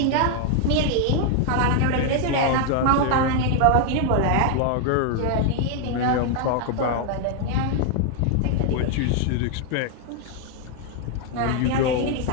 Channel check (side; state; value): both; different; correlation 0.00